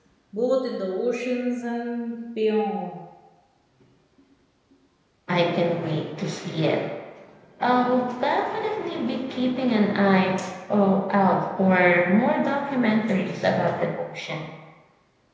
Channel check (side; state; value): both; identical; correlation 1.00